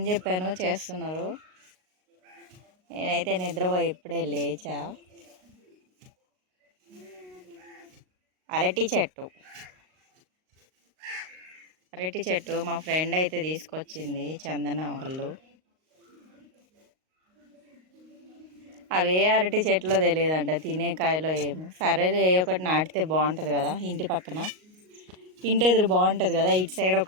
చెప్పాను చేస్తున్నారు. నేనైతే నిద్రపోయి ఇప్పుడే లేచా. అరటి చెట్టు మా ఫ్రెండ్ అయితే తీసుకొచ్చింది చందన వాళ్ళు. అవే అరటి చెట్లో తెలియదంట తినే కాయలో ఏమో. సరే ఒకటి నాటితే బాగుంటుంది కదా ఇంటి పక్కన, ఇంటి ఎదురు బాగుంటుంది కదా. ఇటు సైడ్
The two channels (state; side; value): late; left; 38 ms